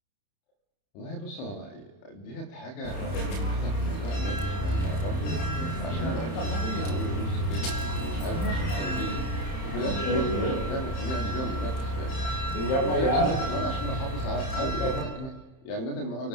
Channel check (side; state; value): right; late; 31 ms